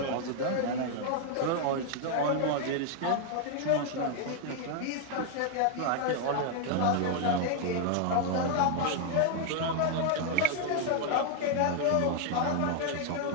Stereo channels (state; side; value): different; both; correlation 0.00